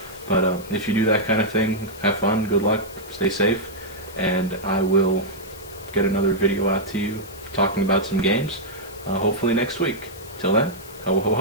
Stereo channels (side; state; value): left; noise; hiss, 19 dB below the sound